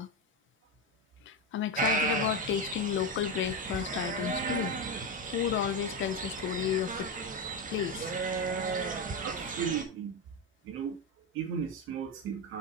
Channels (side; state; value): both; normal; correlation 0.12